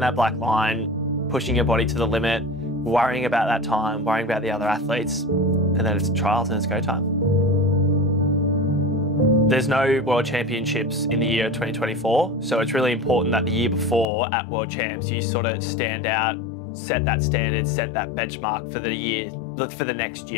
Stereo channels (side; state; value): right; drops out; at 14.1 s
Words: black line, pushing your body to the limit, worrying about that time, worrying about the other athletes, and then it's trials and it's go time. There's no World Championships in the year 2024, so it's really important that the year before at World Champs, you sort of stand out, set that standard, set that benchmark for the year, for the next